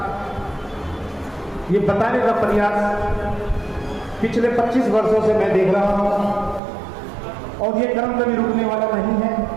ये बताने का प्रयास पिछले 25 वर्षों से मैं देख रहा हूं और ये क्रम कभी रुकने वाला नहीं है।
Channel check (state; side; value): drops out; left; at 6.6 s